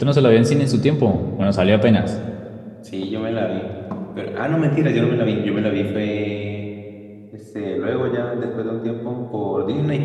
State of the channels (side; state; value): both; identical; correlation 1.00